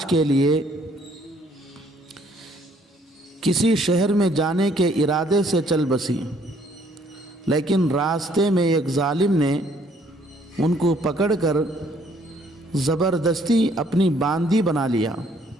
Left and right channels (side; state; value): both; normal; correlation 0.64